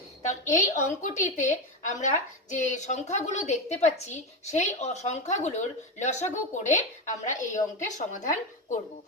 তাহলে এই অঙ্কটিতে আমরা যে সংখ্যাগুলো দেখতে পাচ্ছি সেই সংখ্যাগুলোর লসাগু করে আমরা এই অঙ্কের সমাধান করব।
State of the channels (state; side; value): normal; both; correlation 0.14